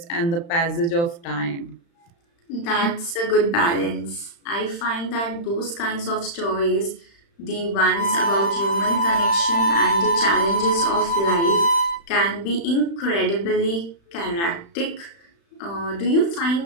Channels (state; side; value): late; right; 35 ms